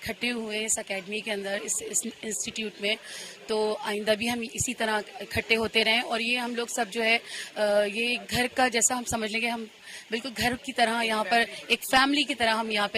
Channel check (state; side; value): identical; both; correlation 1.00